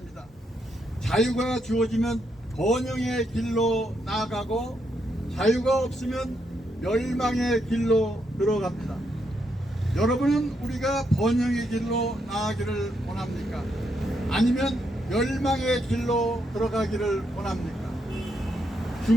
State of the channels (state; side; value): normal; both; correlation 0.79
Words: 자유가 주어지면 번영의 길로 나아가고, 자유가 없으면 멸망의 길로 들어갑니다. 여러분은 우리가 번영의 길로 나아가기를 원합니까? 아니면 멸망의 길로 들어가기를 원합니까?